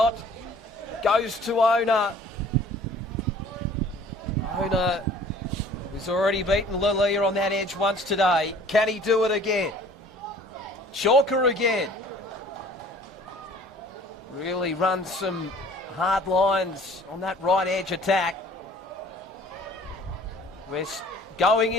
goes to Ona. Ona, who's already beaten Lalia on that edge once today. Can he do it again? Chalker again. Really runs some hard lines on that right edge attack. We're going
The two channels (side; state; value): both; normal; correlation 0.51